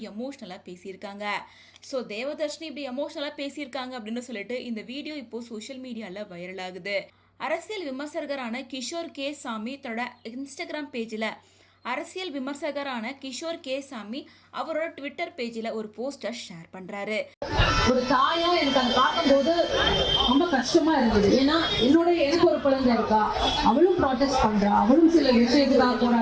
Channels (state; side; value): identical; both; correlation 1.00